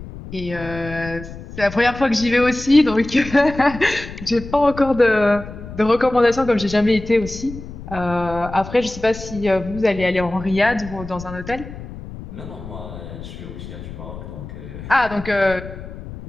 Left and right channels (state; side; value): noise; left; rumble, 12 dB below the sound